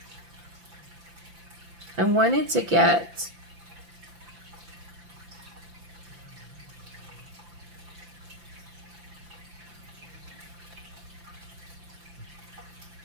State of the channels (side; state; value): left; late; 5.9 ms